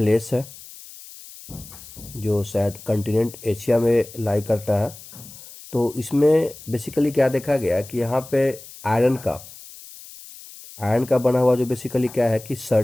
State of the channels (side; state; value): left; noise; hiss, 17 dB below the sound